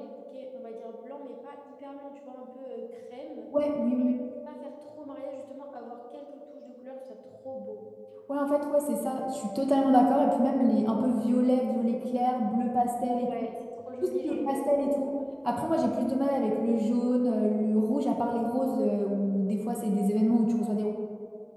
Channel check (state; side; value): identical; both; correlation 1.00